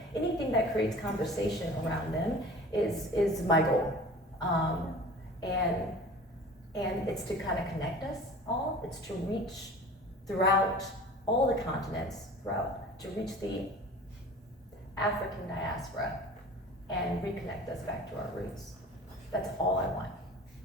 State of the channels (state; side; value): normal; both; correlation 0.41